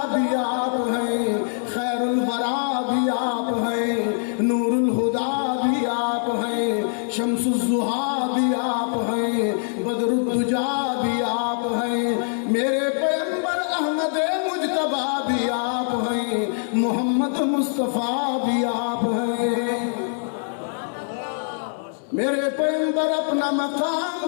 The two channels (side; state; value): right; silent; digital silence